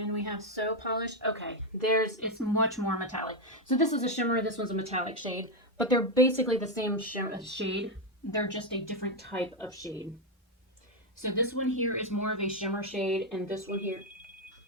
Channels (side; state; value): both; normal; correlation 0.05